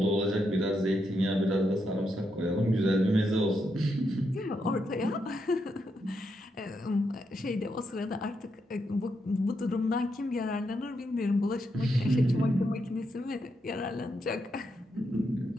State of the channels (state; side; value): normal; both; correlation 0.81